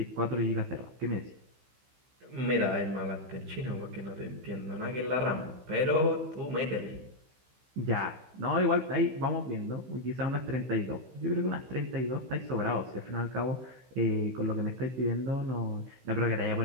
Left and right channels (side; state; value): left; late; 15 ms